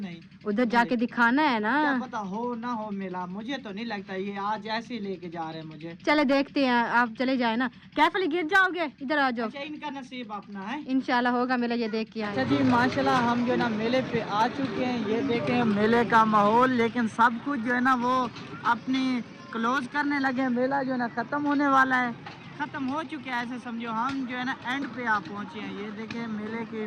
उधर जाके दिखाना है ना, क्या पता हो ना हो मेला, मुझे तो नहीं लगता, ये आज ऐसे ही लेके जा रहे हैं मुझे। चले देखते हैं, आप चले जाए ना, कैफली गिर जाओगे, इधर आ जाओ। अच्छा इनका नसीब अपना है, इंशाल्लाह होगा मेला, ये देख के आए। अच्छा जी माशाल्लाह हम जो है ना मेले पे आ चुके हैं, ये देखें मेले का माहौल, लेकिन सब कुछ जो है ना वो अपनी क्लोज करने लगे हैं, मेला जो है ना ख़त्म होने वाला है, ख़त्म हो चुके हैं ऐसे समझो। हम जो है ना एंड पे आ पहुँचे हैं, ये देखें मेले की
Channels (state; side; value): identical; both; correlation 1.00